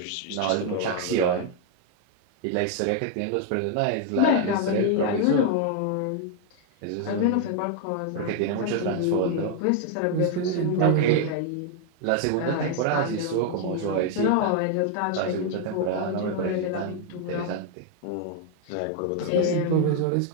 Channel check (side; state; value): both; different; correlation 0.00